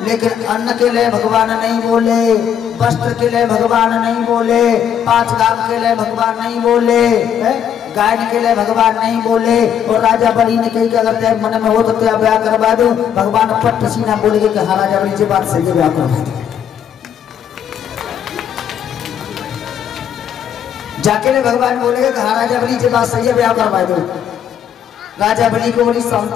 लेकिन अन्न के लिए भगवान नहीं बोले, वस्त्र के लिए भगवान नहीं बोले, 5 गांव के लिए भगवान नहीं बोले, गाय के लिए भगवान नहीं बोले। और राजा बलि ने कही कि अगर तेरे मन में हो तो तेरा ब्याह करवा दूं। भगवान पट सीना बोले कि हाँ राजा बलि जी बात सही है, ब्याह करवा दो। जाके ने भगवान बोलेगा कि हाँ राजा बलि जी बात सही है, ब्याह करवा दो। राजा बलि को बड़ी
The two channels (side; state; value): right; quieter; 8.8 dB